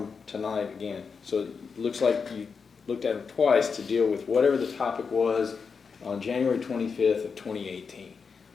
tonight again. So it looks like you looked at them twice to deal with whatever the topic was on January 25th of 2018.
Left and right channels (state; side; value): quieter; right; 5.5 dB